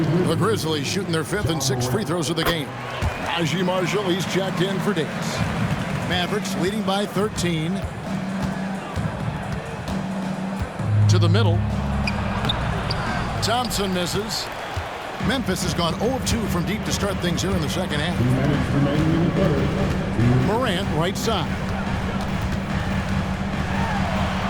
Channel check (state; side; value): identical; both; correlation 1.00